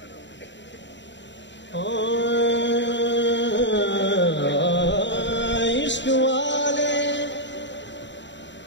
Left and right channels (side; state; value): right; late; 0.52 ms